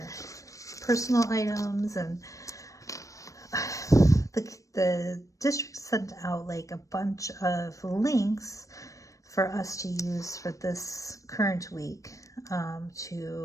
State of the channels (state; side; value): late; right; 0.16 ms